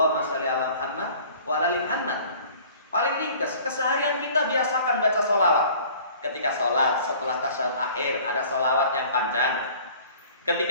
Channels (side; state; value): both; inverted; correlation -0.49